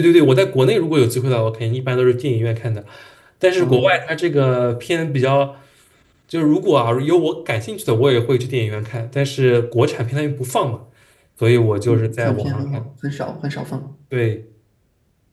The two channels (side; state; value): both; identical; correlation 1.00